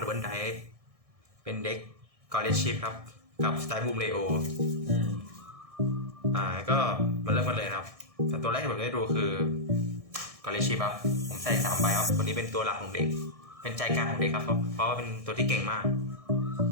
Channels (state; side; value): late; left; 1.6 ms